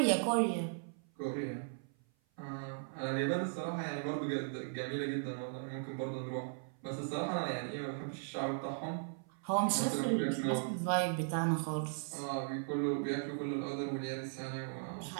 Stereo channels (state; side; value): silent; left; 53 dB below the other